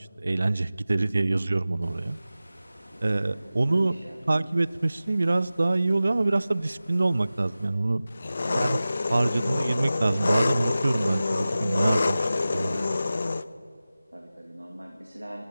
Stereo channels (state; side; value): inverted; both; correlation -0.95